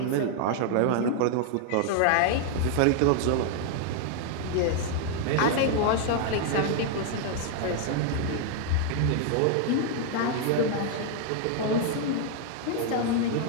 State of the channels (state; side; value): different; both; correlation 0.00